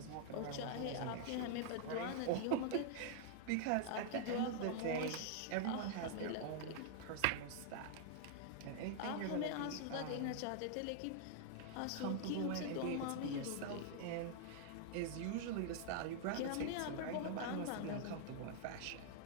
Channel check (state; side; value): different; both; correlation -0.01